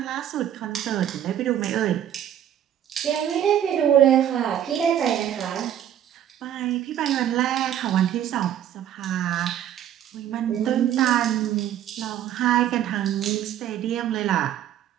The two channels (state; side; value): quieter; left; 10.7 dB